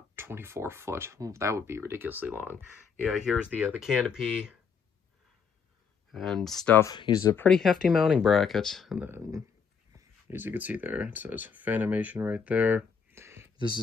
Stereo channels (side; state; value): right; quieter; 6.2 dB